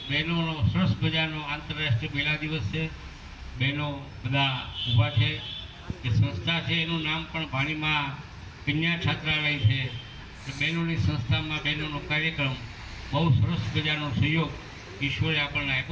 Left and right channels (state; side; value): identical; both; correlation 1.00